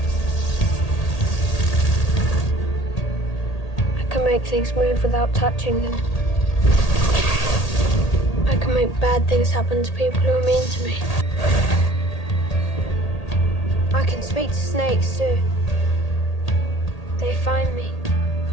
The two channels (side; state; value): right; late; 1.8 ms